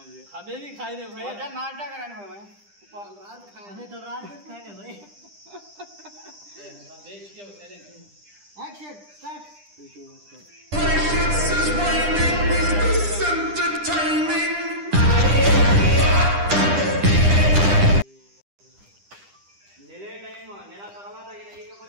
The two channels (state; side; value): late; left; 10 ms